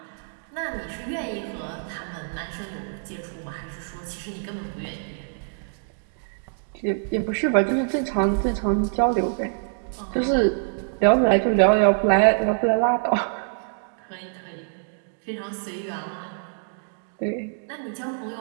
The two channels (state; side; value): silent; left; digital silence